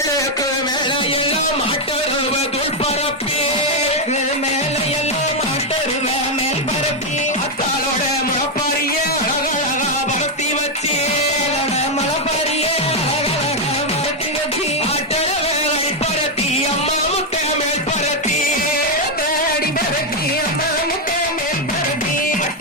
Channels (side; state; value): both; normal; correlation 0.02